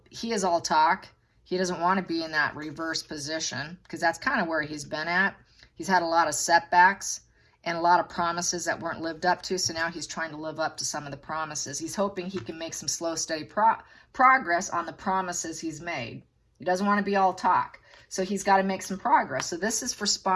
he is all talk. He doesn't want to be in that reverse position because that's kind of where he's been at. He's had a lot of setbacks and a lot of promises that weren't lived up to. So now he's trying to live up to some of the promises. He's hoping he can make some slow, steady progress on the promises he's made. He doesn't want to be all talk. So he's got to make some progress. So this is for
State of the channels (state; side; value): identical; both; correlation 1.00